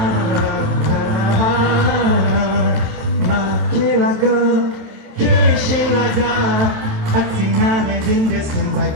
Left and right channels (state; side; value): late; left; 27 ms